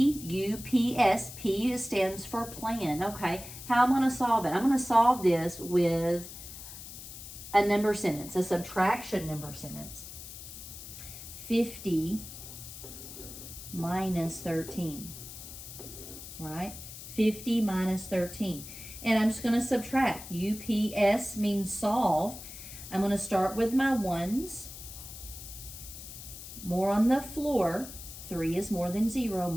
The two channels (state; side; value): noise; left; hiss, 12 dB below the sound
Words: P stands for plan. Okay, how am I going to solve it? I'm going to solve this with a number sentence, a subtraction number sentence. 50 minus 13, right? 50 minus 13. And I'm just going to subtract. UPS means solve. I'm going to start with my ones. More on the floor. 3 is more than 0.